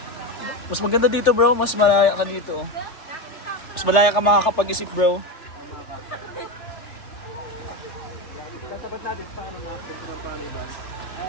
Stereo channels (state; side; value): late; right; 3.4 ms